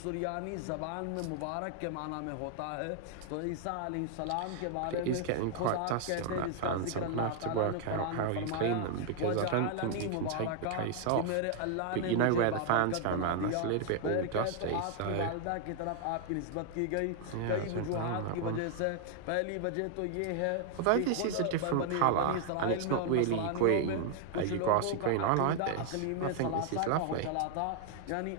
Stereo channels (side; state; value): both; different; correlation 0.00